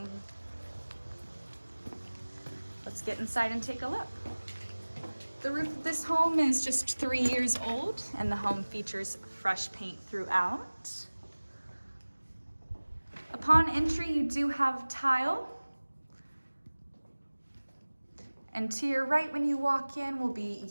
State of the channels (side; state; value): both; inverted; correlation -1.00